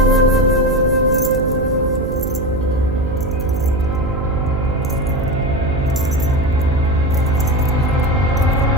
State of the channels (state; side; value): noise; right; hum, 5 dB below the sound